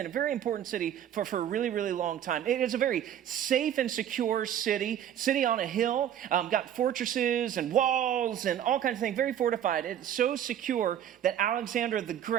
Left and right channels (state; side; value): quieter; left; 10.2 dB